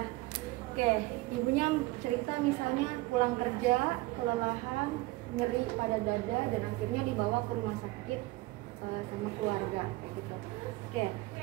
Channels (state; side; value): quieter; left; 20.5 dB